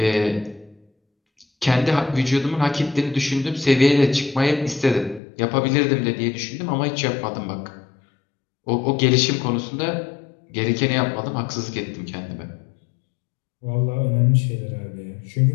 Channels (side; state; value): right; drops out; at 5.2 s